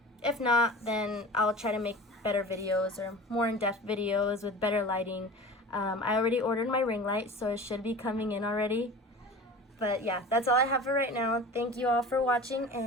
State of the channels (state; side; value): normal; both; correlation 0.37